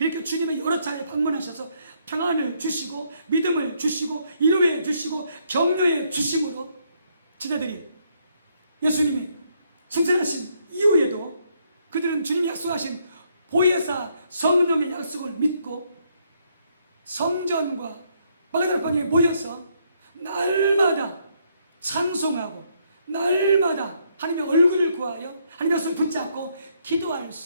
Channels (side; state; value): both; inverted; correlation -0.72